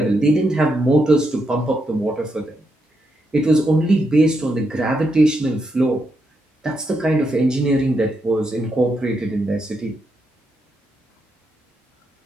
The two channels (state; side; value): normal; both; correlation 0.81